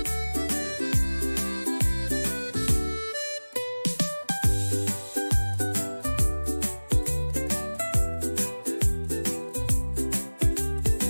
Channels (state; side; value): inverted; both; correlation -1.00